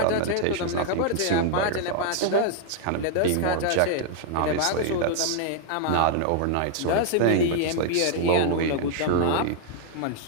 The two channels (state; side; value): different; both; correlation 0.00